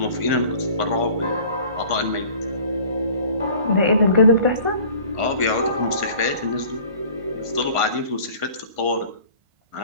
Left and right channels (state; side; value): late; left; 1.5 ms